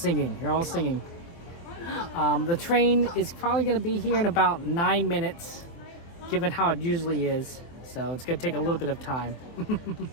You're all singing. The train is probably going to be here in about 9 minutes, given how it usually is. So it's going to take a little bit of time,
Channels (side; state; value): right; late; 24 ms